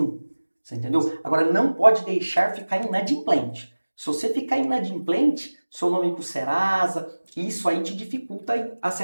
Você entendeu? Agora não pode deixar ficar inadimplente. Se você ficar inadimplente, seu nome ir para o Serasa, isso aí te dificulta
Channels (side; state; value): both; inverted; correlation -1.00